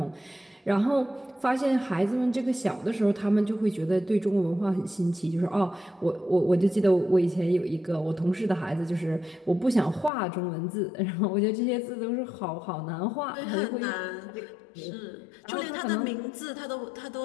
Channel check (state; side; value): drops out; right; at 10.1 s